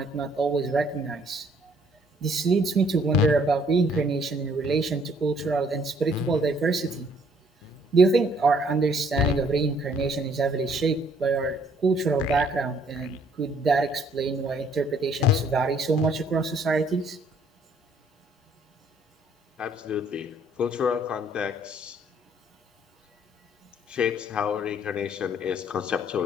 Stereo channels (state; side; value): normal; both; correlation 0.63